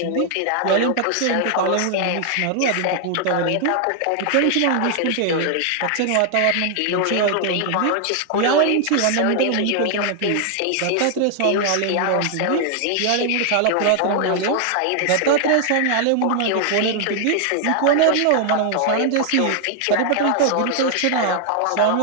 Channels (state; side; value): different; both; correlation 0.00